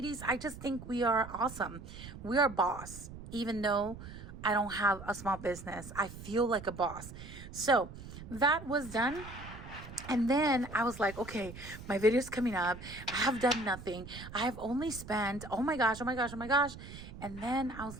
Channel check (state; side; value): noise; right; rumble, 13 dB below the sound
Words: I just think we are awesome. We are boss, even though I don't have a small business. I feel like a boss. So that was done. And then I was like, okay, my video's coming up. I have done nothing. I have only spent, oh my gosh, oh my gosh, oh my gosh. And then I was